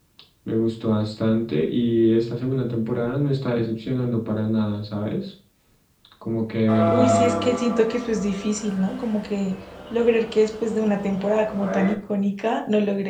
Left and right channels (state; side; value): identical; both; correlation 1.00